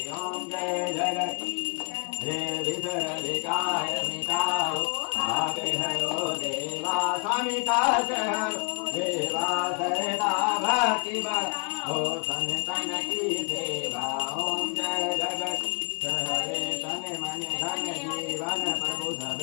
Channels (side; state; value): right; quieter; 39.3 dB